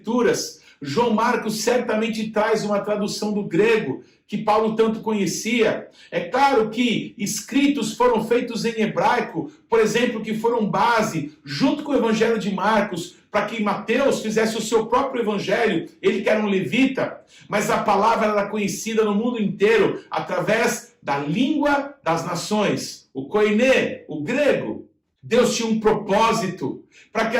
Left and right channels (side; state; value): both; identical; correlation 1.00